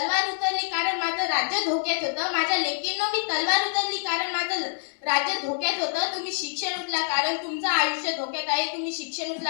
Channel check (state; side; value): silent; right; 61 dB below the other